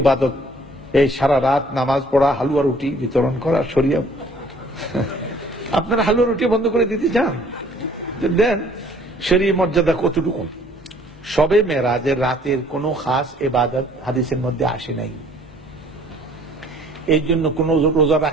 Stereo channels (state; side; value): normal; both; correlation 0.57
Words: ইবাদত এই সারা রাত নামাজ পড়া, হালুয়া রুটি বিতরণ করা শরিয়া। আপনারা হালুয়া রুটি বন্ধ করে দিতে চান? দেন। শরীয়ত মর্যাদা কতটুকু? শবে মেরাজের রাতের কোনো খাস ইবাদত হাদিসের মধ্যে আসে নাই। এই জন্য কোন রোজা